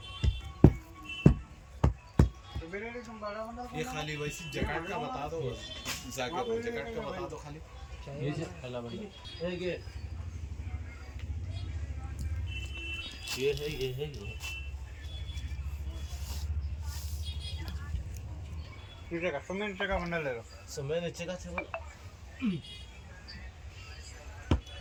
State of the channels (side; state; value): both; identical; correlation 1.00